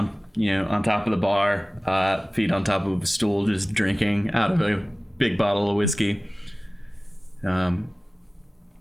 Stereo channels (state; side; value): normal; both; correlation 0.98